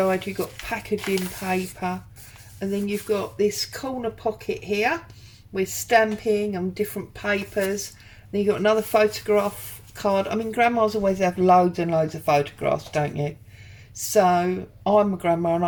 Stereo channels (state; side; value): identical; both; correlation 1.00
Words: you've got packaging paper, and then you've got this corner pocket here with stamping and different papers. Then you've got another photograph card. I mean, grandmas always have loads and loads of photographs, don't you? So I'm a grandma and